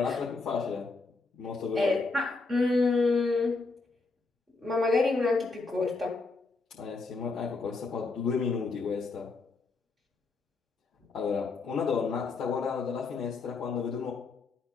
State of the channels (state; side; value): quieter; right; 3.9 dB